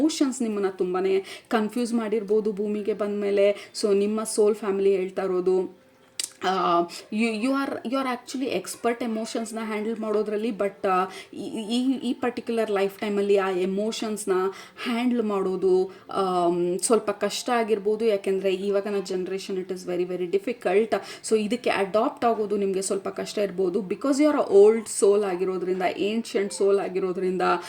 ನಿಮ್ಮನ್ನು ತುಂಬಾ ಕನ್ಫ್ಯೂಸ್ ಮಾಡಿರ್ಬೋದು ಭೂಮಿಗೆ ಬಂದ ಮೇಲೆ. ಸೊ ನಿಮ್ಮ ಸೋಲ್ ಫ್ಯಾಮಿಲಿ ಹೇಳ್ತಾ ಇರೋದು, ಯು ಆರ್ ಆ್ಯಕ್ಚುಲಿ ಎಕ್ಸ್ಪರ್ಟ್ ಎಮೋಷನ್ಸ್ನ ಹ್ಯಾಂಡಲ್ ಮಾಡೋದ್ರಲ್ಲಿ. ಬಟ್ ಈ ಪರ್ಟಿಕ್ಯುಲರ್ ಲೈಫ್ ಟೈಮಲ್ಲಿ ಆ ಎಮೋಷನ್ಸ್ನ ಹ್ಯಾಂಡಲ್ ಮಾಡೋದು ಸ್ವಲ್ಪ ಕಷ್ಟ ಆಗಿರ್ಬೋದು. ಯಾಕೆಂದರೆ ಇವಾಗಿನ generation it is very difficult. So ಇದಕ್ಕೆ ಅಡಾಪ್ಟ್ ಆಗೋದು ನಿಮಗೆ ಸ್ವಲ್ಪ ಕಷ್ಟ ಇರ್ಬೋದು. ಬಿಕಾಸ್ ಯು ಆರ್ ಓಲ್ಡ್ ಸೋಲ್ ಆಗಿರೋದ್ರಿಂದ, ಏನ್ಷಿಯಂಟ್ ಸೋಲ್ ಆಗಿರೋದ್ರಿಂದ,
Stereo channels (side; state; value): both; identical; correlation 1.00